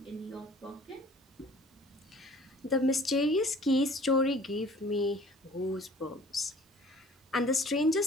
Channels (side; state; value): both; normal; correlation 0.50